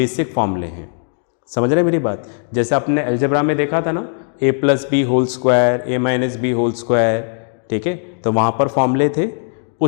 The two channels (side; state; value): right; silent; digital silence